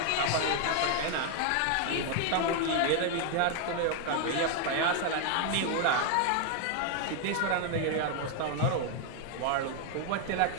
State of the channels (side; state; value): both; different; correlation 0.00